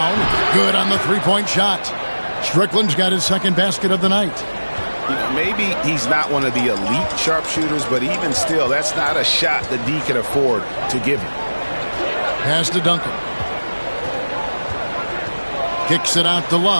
Good on the three-point shot. Strickland's got his second basket of the night. You know, maybe he's not one of the elite sharpshooters, but even still, that's not a shot that D can afford to give him. Pass to Duncan. Kicks it out to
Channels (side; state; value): both; inverted; correlation -1.00